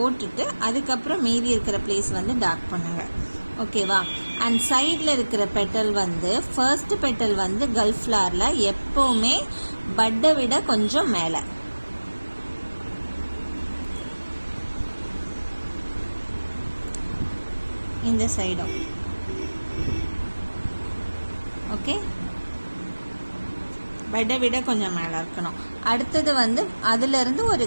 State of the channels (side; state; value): both; inverted; correlation -1.00